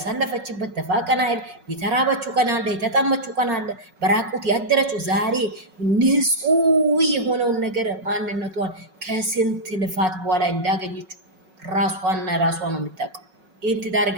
ተፋቀና አይደል? የተራበችው ቀን አለ፣ የተጠመችው ቀን አለ፣ በራቁት ያደረችው ዛሬ ንጹህ የሆነውን ነገር ማንነቷን ከስንት ልፋት በኋላ እንዳገኘችው ራሷና ራሷ ነው የምታውቀው። ይህን ትዳር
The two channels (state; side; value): late; left; 5.4 ms